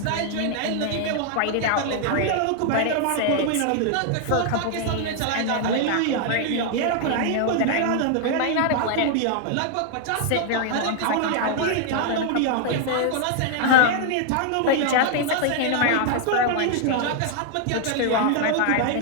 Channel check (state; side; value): different; both; correlation 0.00